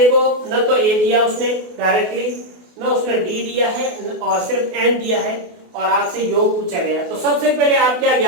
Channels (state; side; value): late; left; 28 ms